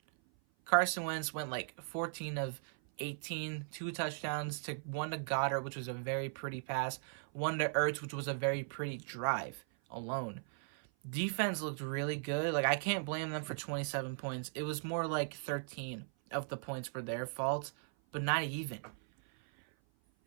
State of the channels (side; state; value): left; silent; 53 dB below the other